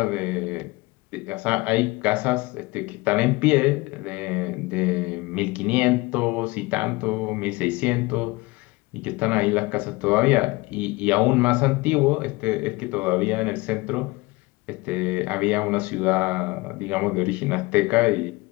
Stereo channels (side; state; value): right; quieter; 23.1 dB